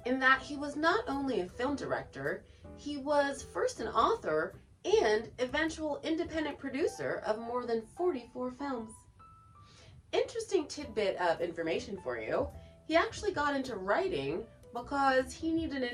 in that he was not only a film director, he was first an author and eventual independent producer of more than 44 films. Interesting tidbit of information for you, he actually got into writing because he needed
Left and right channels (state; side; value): identical; both; correlation 1.00